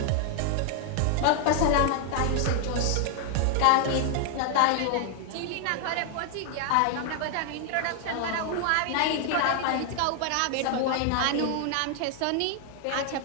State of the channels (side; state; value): both; different; correlation 0.00